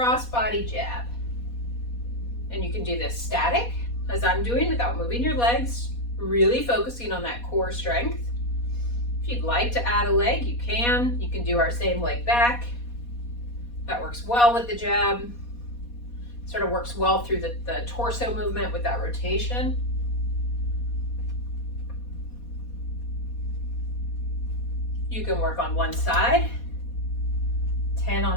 body jab. And you can do this static, as I'm doing, without moving your legs, really focusing on that core strength. If you'd like to add a leg, you can. You can do our same leg back. That works well with the jab. Sort of works well through the torso movement with that rotation. You can work on one side, 10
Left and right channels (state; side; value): late; right; 4.2 ms